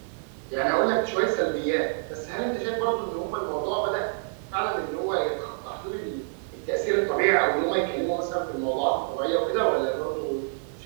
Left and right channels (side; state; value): left; silent; 60 dB below the other